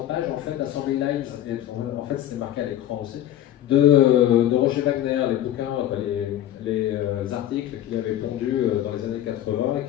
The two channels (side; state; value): right; quieter; 12.1 dB